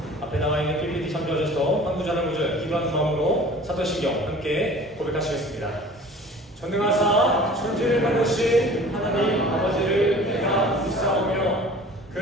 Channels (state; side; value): normal; both; correlation 0.45